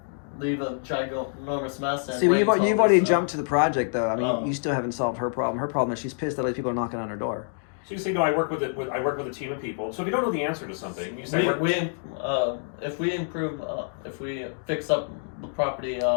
leave a ginormous mess. And See, you've wait till already it's, jumped to the project, though. I mean, Oh. you still haven't solved her problem. Her problem is she's pissed that other people are knocking on her door. So you say, no, I work with a team of people. So if you don't know the answer to something, you say, if we fix up the property,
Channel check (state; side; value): silent; right; digital silence